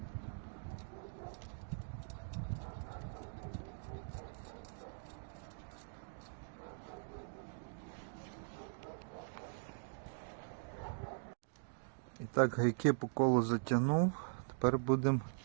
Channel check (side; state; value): left; silent; digital silence